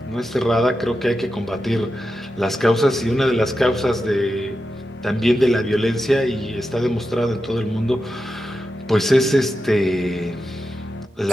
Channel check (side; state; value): both; normal; correlation 0.89